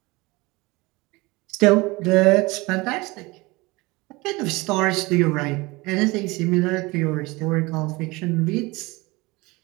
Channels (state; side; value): quieter; left; 23.3 dB